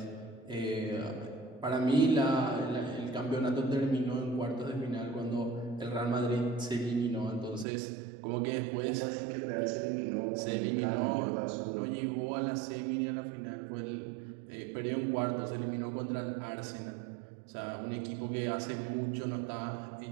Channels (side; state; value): left; drops out; at 7.7 s